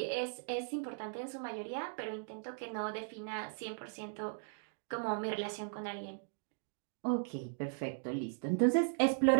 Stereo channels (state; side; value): silent; left; digital silence